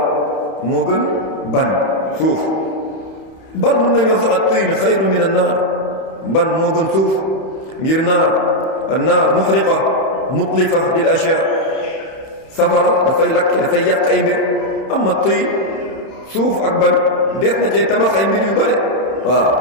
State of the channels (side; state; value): right; late; 31 ms